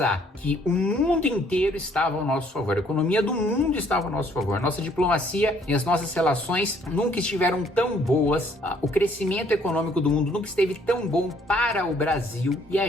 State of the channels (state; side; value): normal; both; correlation 0.63